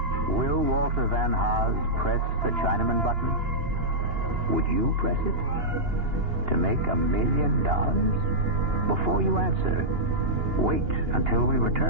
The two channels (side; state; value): left; late; 2.9 ms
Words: Will Walter Van Haas press the Chinaman button? Would you press it? To make $1 million? Before you answer, wait until we